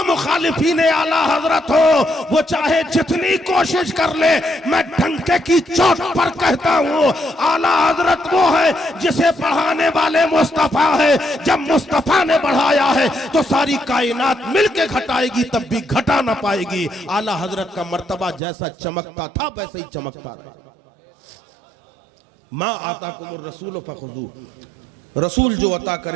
मुखालिफीन आला हजरत हो, वो चाहे जितनी कोशिश कर ले, मैं डंके की चोट पर कहता हूँ, आला हजरत वो है जिसे बढ़ाने वाले मुस्तफा है। जब मुस्तफा ने बढ़ाया है तो सारी कायनात मिलके घटाएगी, तब भी घटा ना पाएगी। आला हजरत का मर्तबा जैसा चमकता था वैसे ही चमकता था। माँ आता कुमुर रसूल फखुजू, रसूल जो अता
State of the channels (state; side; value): drops out; left; at 18.4 s